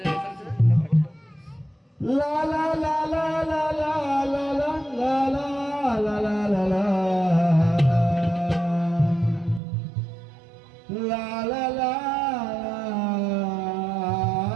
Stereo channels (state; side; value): drops out; left; at 9.6 s